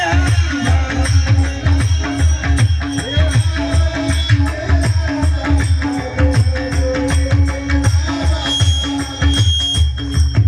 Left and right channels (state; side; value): identical; both; correlation 1.00